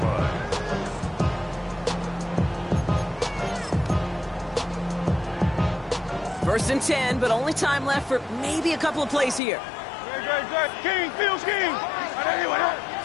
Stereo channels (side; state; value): right; drops out; at 9.4 s